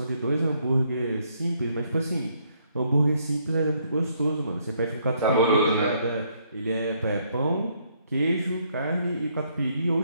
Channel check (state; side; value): inverted; both; correlation -0.70